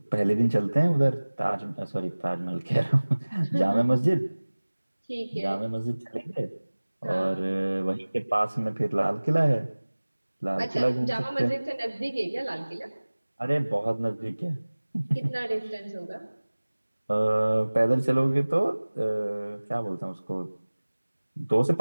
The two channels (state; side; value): inverted; both; correlation -1.00